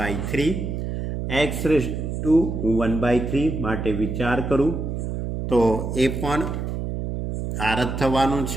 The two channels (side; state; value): right; noise; hum, 4 dB below the sound